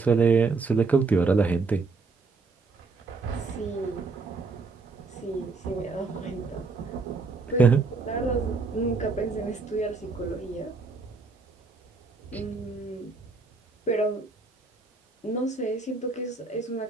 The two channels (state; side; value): quieter; left; 4.1 dB